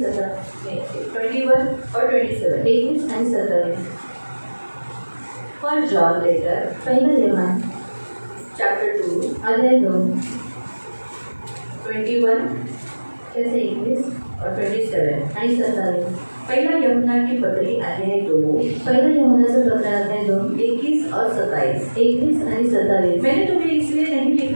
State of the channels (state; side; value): inverted; both; correlation -1.00